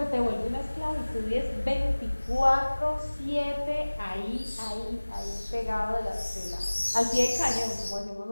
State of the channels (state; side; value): inverted; both; correlation -1.00